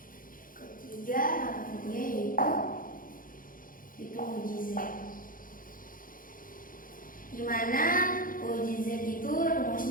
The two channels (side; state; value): right; late; 0.40 ms